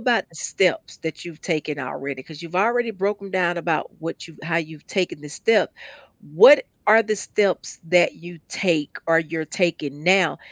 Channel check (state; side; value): identical; both; correlation 1.00